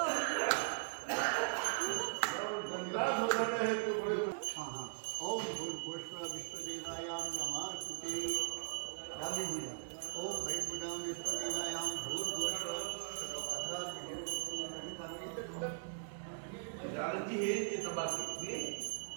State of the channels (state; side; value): silent; left; digital silence